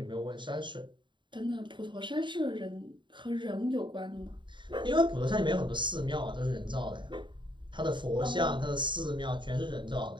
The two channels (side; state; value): left; late; 0.23 ms